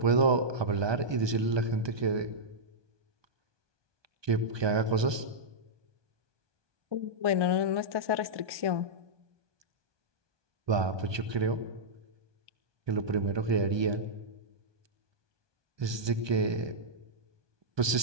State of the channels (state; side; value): late; left; 1.2 ms